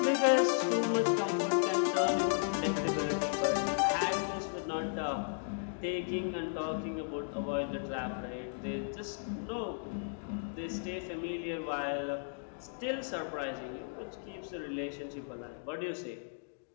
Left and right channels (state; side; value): silent; right; digital silence